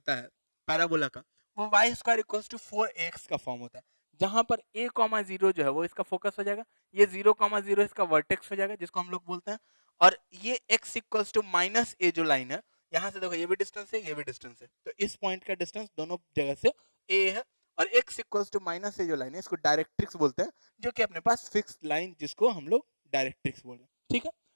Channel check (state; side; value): inverted; both; correlation -1.00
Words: है पैराबोला का, वो Y square equals to 4ax का फॉर्म होता है, जहां पर a कॉमा 0 जो है वो इसका फोकस हो जाएगा, ये 0 कॉमा 0 इसका वर्टेक्स हो जाएगा जिसको हम लोग बोलते हैं, और ये x equals to minus a जो लाइन है, यहां से देखो ये भी डिस्टेंस है ये भी डिस्टेंस है, तो इस पॉइंट का डिस्टेंस दोनों जगह से a है, और x equals to minus a जो लाइन है इसको डायरेक्ट्रिक्स बोलते हैं, जो कि अपने पास फिक्स्ड लाइन जिसको हम लोग डायरेक्ट्रिक्स बोल रहे हैं। ठीक है,